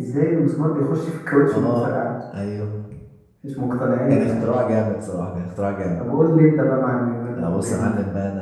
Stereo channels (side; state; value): both; identical; correlation 1.00